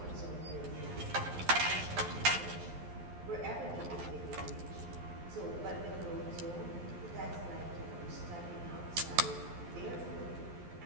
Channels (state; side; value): late; left; 11 ms